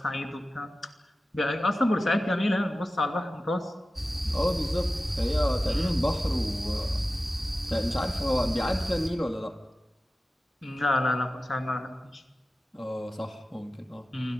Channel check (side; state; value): both; normal; correlation 0.95